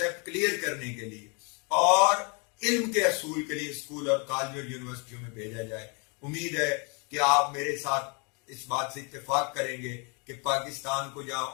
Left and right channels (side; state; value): right; quieter; 34.0 dB